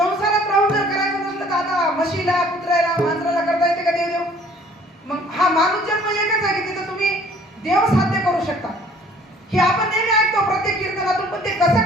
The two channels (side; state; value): both; normal; correlation 0.56